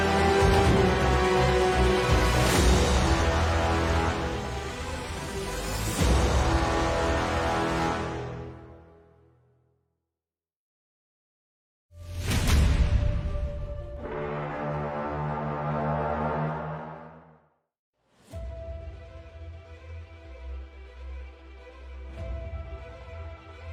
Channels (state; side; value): identical; both; correlation 1.00